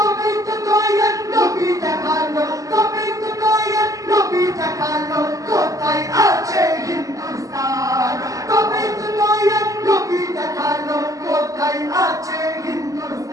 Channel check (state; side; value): late; left; 0.16 ms